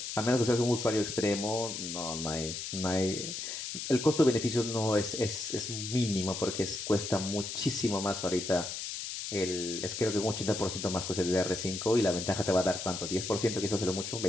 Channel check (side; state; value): left; noise; hiss, 6 dB below the sound